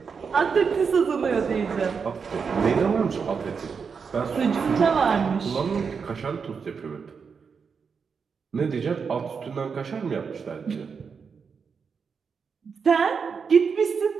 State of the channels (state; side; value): quieter; left; 5.8 dB